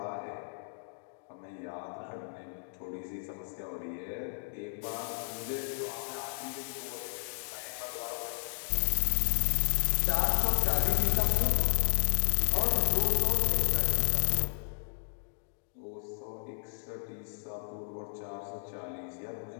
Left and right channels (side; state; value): right; silent; digital silence